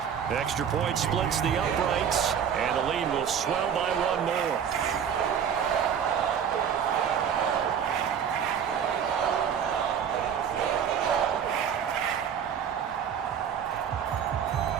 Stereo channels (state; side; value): quieter; left; 8.0 dB